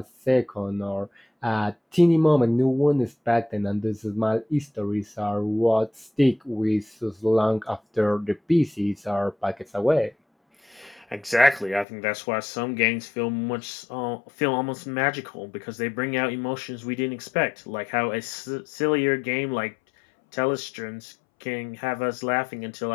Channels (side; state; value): right; drops out; at 11.9 s